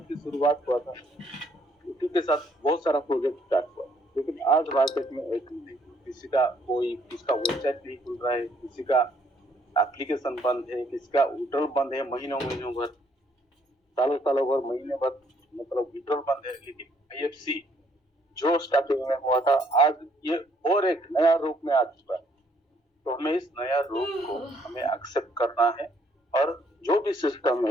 की शुरुआत हुआ था उसी के साथ बहुत सारा प्रोजेक्ट स्टार्ट हुआ, लेकिन आज मार्केट में एक किसका वेबसाइट नहीं खुल रहा है, किसी का एप्लीकेशन बंद है, किसी का विड्रॉल बंद है महीनों भर, सालों भर, महीने भर, मतलब विड्रॉल बंद है। लेकिन IFC जो स्टार्टिंग में हुआ था आज ये और एक नया रूप में आ चुका है। तो हमें इस नया रूप को हमें एक्सेप्ट करना है और जो भी सिस्टम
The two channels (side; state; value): both; normal; correlation 0.66